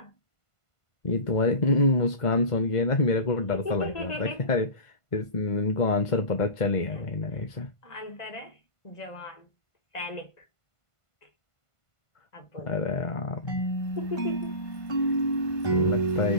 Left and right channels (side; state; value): right; late; 1.5 ms